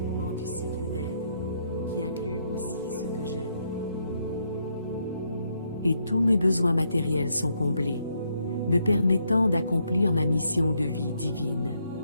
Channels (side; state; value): both; inverted; correlation -0.76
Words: du cycle d'aide, qui inclut aussi ceux que j'aime. Et tous mes besoins matériels sont comblés, me permettant d'accomplir ma mission de vie divine.